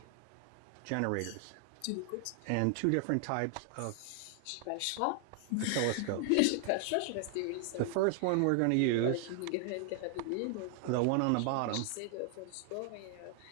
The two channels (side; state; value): both; different; correlation 0.00